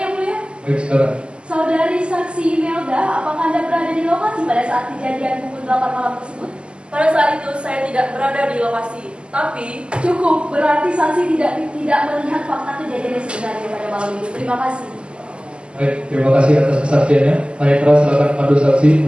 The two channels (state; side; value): late; left; 0.051 ms